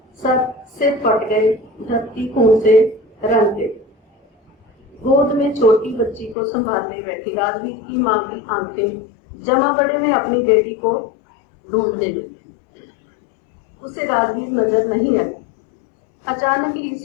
सब सिर फट गए, धरती खून से रंग गई। गोद में छोटी बच्ची को संभालने बैठी राजवीर की मां की आंखें जमा बड़े में अपनी बेटी को ढूंढने लगी। उसे राजवीर नजर नहीं आई। अचानक ही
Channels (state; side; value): drops out; right; at 6.4 s